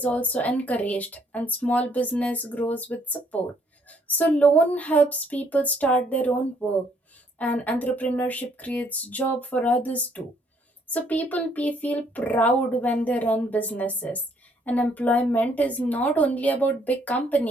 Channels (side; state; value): both; normal; correlation 0.67